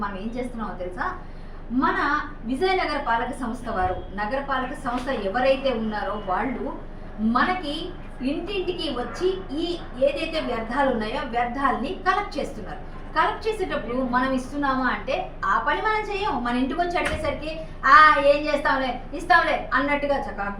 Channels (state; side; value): identical; both; correlation 1.00